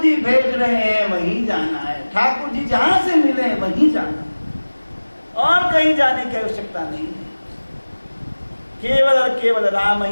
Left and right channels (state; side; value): inverted; both; correlation -1.00